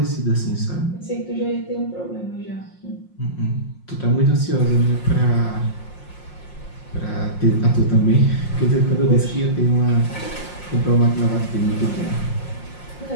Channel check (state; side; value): late; right; 5.6 ms